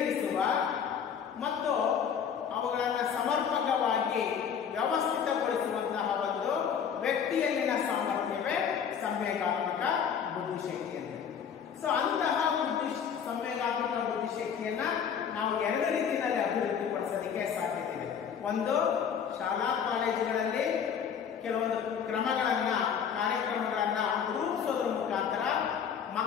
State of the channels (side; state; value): right; quieter; 7.6 dB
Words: ಮತ್ತು ಅವುಗಳನ್ನು ಸಮರ್ಪಕವಾಗಿ ವ್ಯವಸ್ಥಿತಗೊಳಿಸುವಂತಹ ಒಂದು ವ್ಯಕ್ತಿಯಲ್ಲಿನ ಸಾಮರ್ಥ್ಯವೇ ಸಂವೇಗಾತ್ಮಕ ಬುದ್ಧಿಶಕ್ತಿ ಅಂತ. ಸೊ ಅಂತಹ ಸಂವೇಗಾತ್ಮಕ ಬುದ್ಧಿಶಕ್ತಿಯನ್ನ ನಾವು 2 ರೀತಿಯಲ್ಲಿ ಅಭಿವೃದ್ಧಿಪಡಿಸೋದಕ್ಕೆ ಸಾಧ್ಯತೆ ಇದೆ. ಒಂದು, ಶಾಲಾ ಕಾಲೇಜುಗಳಲ್ಲಿ ಕೆಲವೊಂದು ಕಾರ್ಯಕ್ರಮಗಳನ್ನ ರೂಪಿಸೋದ್ರ ಮುಖಾಂತರ